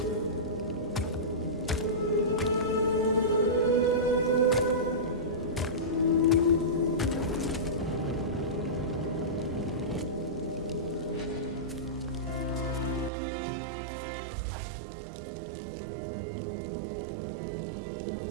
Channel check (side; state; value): left; drops out; at 13.1 s